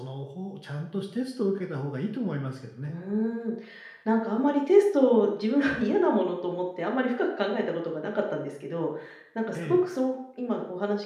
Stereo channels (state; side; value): identical; both; correlation 1.00